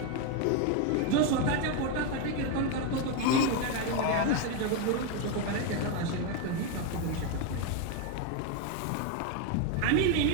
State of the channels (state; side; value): different; both; correlation 0.02